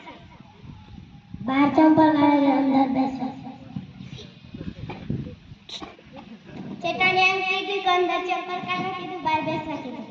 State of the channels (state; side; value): identical; both; correlation 1.00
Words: બહાર ચંપલ કાઢે અંદર બેસો. ચેટાને એમ કીધું કે અંદર ચંપલ કાઢવા કીધું, બહાર બેસવા કીધું.